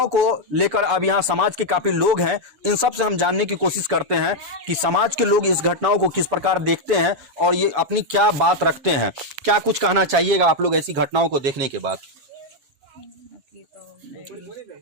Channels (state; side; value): late; left; 7.0 ms